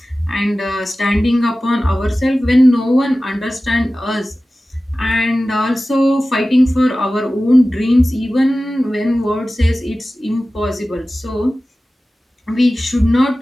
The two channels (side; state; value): both; normal; correlation 0.96